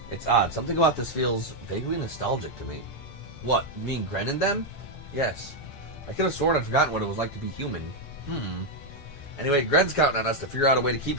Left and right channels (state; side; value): late; right; 8.2 ms